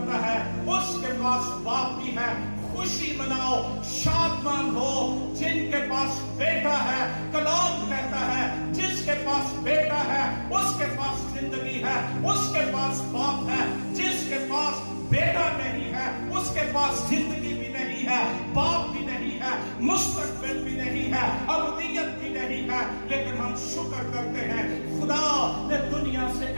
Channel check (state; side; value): inverted; both; correlation -1.00